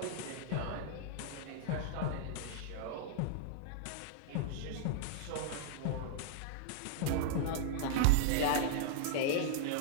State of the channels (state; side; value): different; both; correlation -0.02